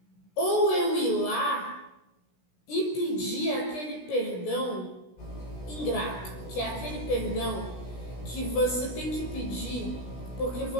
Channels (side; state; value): right; late; 16 ms